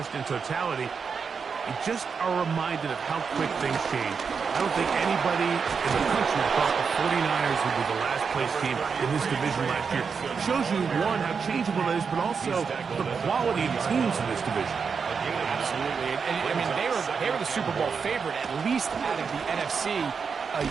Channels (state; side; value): quieter; left; 5.8 dB